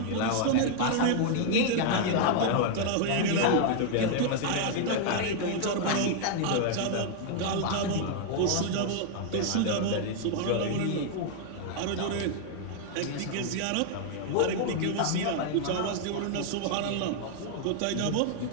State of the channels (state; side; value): different; both; correlation 0.00